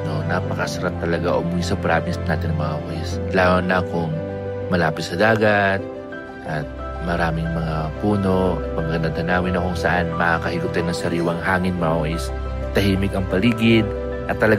no? Napakasarap talaga umuwi sa province natin mga koys. Lalo na kung malapit sa dagat at maraming mga puno at magandang tanawin na kung saan makakahigop tayo ng sariwang hangin mga koys. Tahimik ang paligid at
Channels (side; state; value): both; identical; correlation 1.00